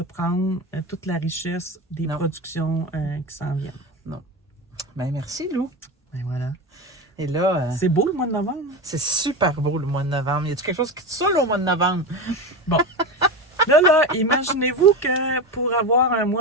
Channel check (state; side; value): normal; both; correlation 0.21